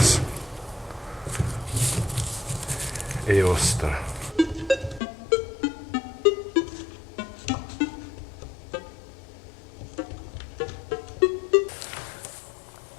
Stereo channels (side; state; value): right; drops out; at 5.0 s